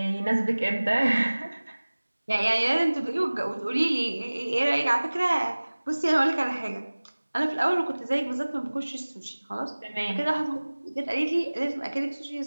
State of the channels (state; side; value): inverted; both; correlation -1.00